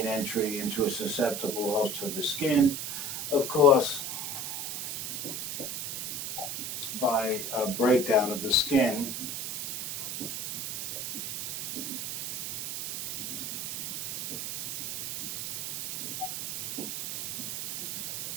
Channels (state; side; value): noise; right; hiss, 4 dB below the sound